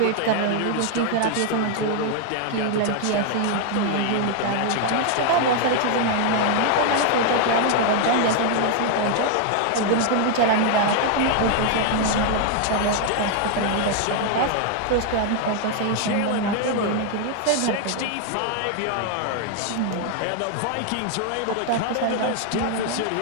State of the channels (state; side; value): different; both; correlation 0.00